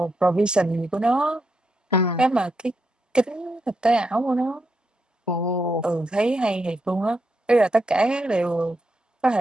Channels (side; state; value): both; normal; correlation 0.82